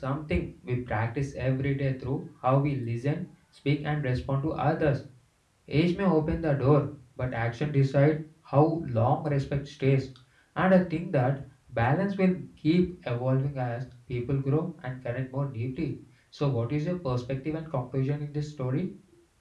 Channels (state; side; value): identical; both; correlation 1.00